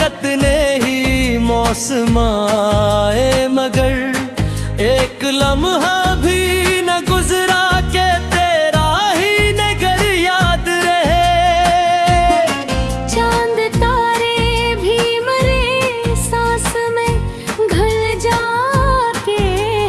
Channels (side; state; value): both; identical; correlation 1.00